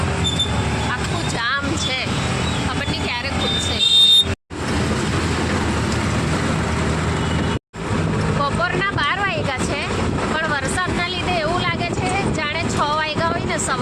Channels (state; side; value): identical; both; correlation 1.00